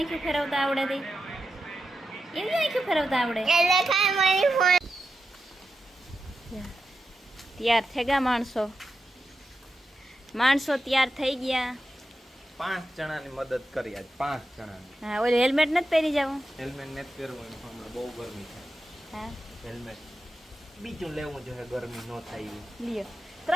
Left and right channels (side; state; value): both; normal; correlation 0.89